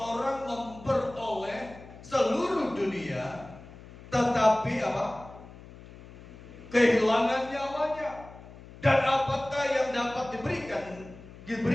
memperoleh seluruh dunia tetapi apa? Kehilangan nyawanya. Dan apakah yang dapat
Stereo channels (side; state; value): left; noise; hum, 18 dB below the sound